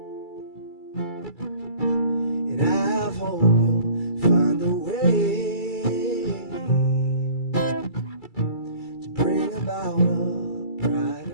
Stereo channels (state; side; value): late; right; 2.3 ms